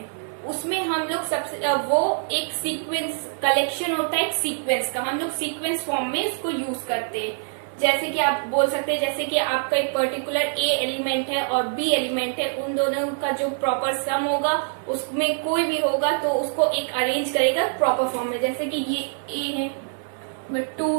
उसमें हम लोग सबसे वो एक सीक्वेंस कलेक्शन होता है, एक सीक्वेंस का हम लोग सीक्वेंस फॉर्म में इसको यूज करते हैं। जैसे कि आप बोल सकते हैं, जैसे कि आपका एक पर्टिकुलर ए एलिमेंट है और बी एलिमेंट है, उन दोनों का जो प्रॉपर सम होगा उसमें कोई भी होगा तो उसको एक अरेंज करेगा प्रॉपर फॉर्म में। जैसे कि ये ए है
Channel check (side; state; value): left; silent; digital silence